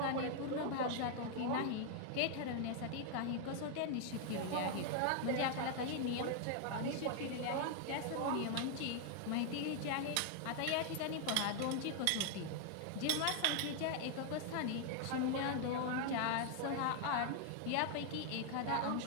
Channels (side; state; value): both; different; correlation 0.00